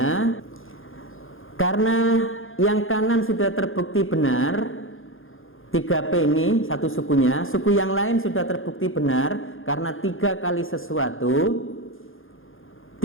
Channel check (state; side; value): late; right; 0.59 ms